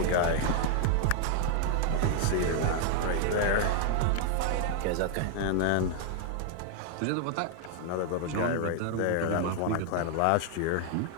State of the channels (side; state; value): both; different; correlation 0.00